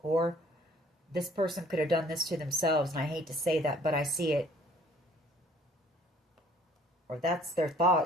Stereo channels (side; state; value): both; normal; correlation 0.57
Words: Or this person could have done this to themselves, and I hate to say that, but I see it. Or that's their